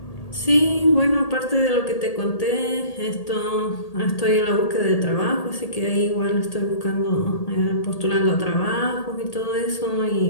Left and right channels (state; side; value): late; right; 1.8 ms